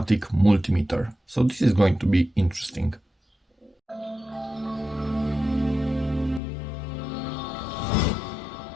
multimeter. So this is going to be interesting.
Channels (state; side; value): drops out; right; at 6.4 s